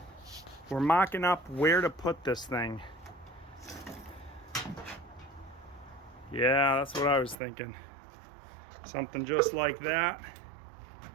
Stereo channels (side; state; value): left; drops out; at 7.4 s